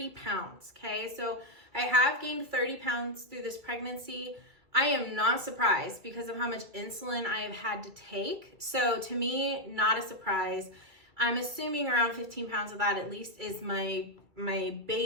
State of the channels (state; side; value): late; left; 2.3 ms